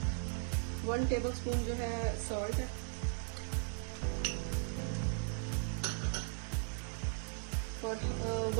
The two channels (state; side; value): silent; left; 53 dB below the other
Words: 1 टेबल स्पून जो है सॉल्ट है और